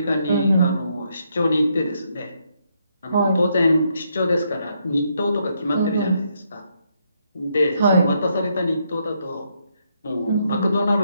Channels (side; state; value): both; inverted; correlation -0.76